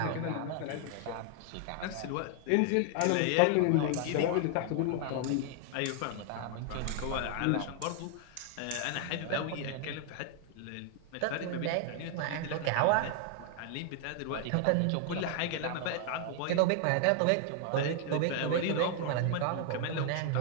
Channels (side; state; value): both; different; correlation 0.00